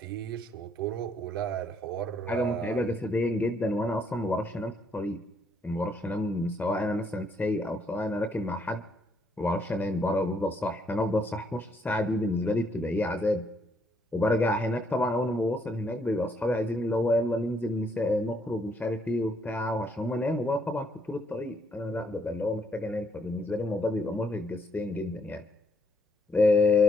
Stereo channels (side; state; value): both; normal; correlation 0.71